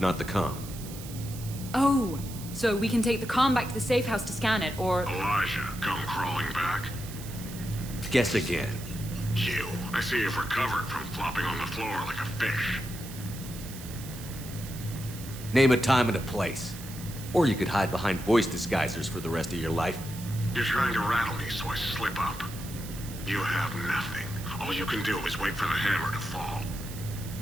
the comm. Oh, so we can take the comm back to the safe house to scan it, or... Elijah, come crawling back. Guess again. You. I see you've recovered from flopping on the floor like a fish. Name a time and a place. Or you could hide behind voice disguisers for the rest of your life. You're trying to rattle me so I slip up. You have nothing. All you can do is wait for the hammer to fall.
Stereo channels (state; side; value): noise; right; hiss, 14 dB below the sound